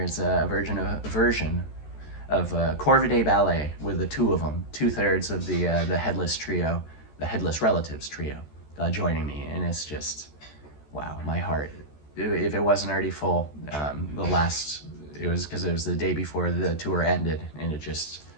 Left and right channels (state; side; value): late; right; 14 ms